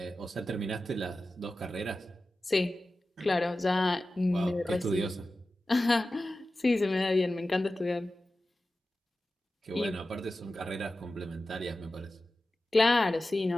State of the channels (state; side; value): normal; both; correlation 0.94